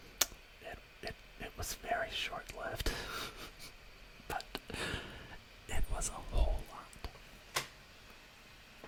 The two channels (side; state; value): both; identical; correlation 1.00